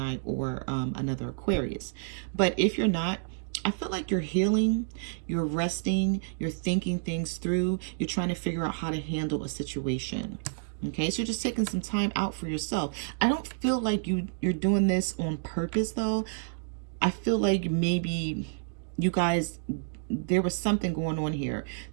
or another Aquarius. But if you're not, I feel like you're healing, you're resting, you're thinking things through, you're trying to figure out how to handle a situation. Okay, so you're just taking some time out for yourself. I don't feel like you're doing this on purpose, though. I feel like maybe you guys, there was something going on here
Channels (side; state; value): left; silent; digital silence